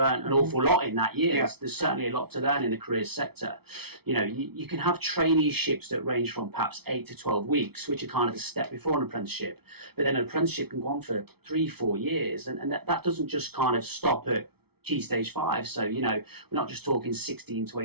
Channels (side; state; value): left; late; 0.97 ms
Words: an awful lot in that year. There's certainly a lot to learn in the careers sector. You know, you can have traineeships that range from perhaps 8 to 12 weeks, which are kind of the step before an apprenticeship. But then an apprenticeship can go on for 3-4 years, and that doesn't just kind of stop at Key Stage 5. So, you know, we're not just talking 16 to